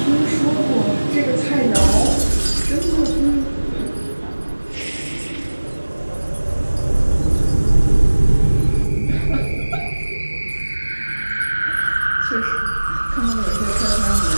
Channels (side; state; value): both; inverted; correlation -1.00